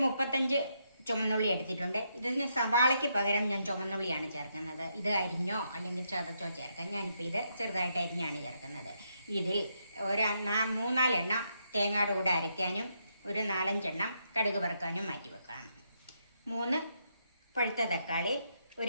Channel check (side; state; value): both; inverted; correlation -0.78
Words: 35 ചുമന്നുള്ളി എടുത്തിട്ടുണ്ട്. ഇതിന് സവാളയ്ക്ക് പകരം ഞാൻ ചുമന്നുള്ളിയാണ് ചേർക്കുന്നത്. ഇത് അരിഞ്ഞോ അല്ലെങ്കിൽ ചതച്ചോ ചേർക്കാം. ഞാനിപ്പോൾ ഇത് ചെറുതായിട്ട് അരിഞ്ഞാണ് ചേർക്കുന്നത്. ഇതിൽ 3-4 എണ്ണം തേങ്ങയുടെ കൂടെ അരയ്ക്കാനും ഒരു 4-5 എണ്ണം കടുക് വറുക്കാനും മാറ്റി വെക്കാം. 3 പഴുത്ത തക്കാളി,